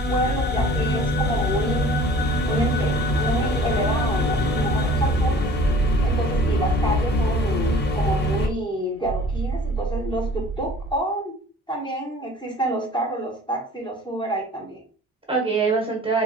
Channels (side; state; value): both; normal; correlation 0.48